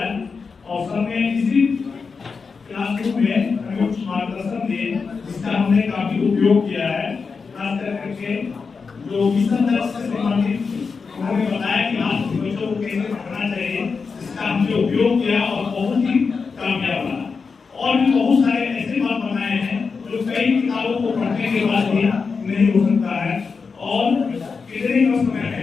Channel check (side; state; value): right; quieter; 5.1 dB